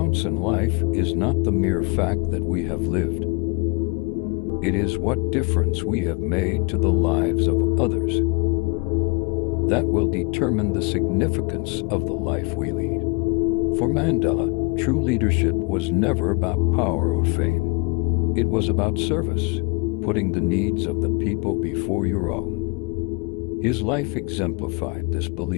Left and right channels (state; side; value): quieter; right; 30.4 dB